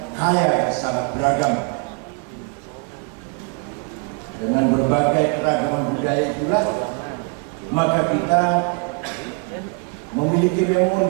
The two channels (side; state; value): left; quieter; 33.1 dB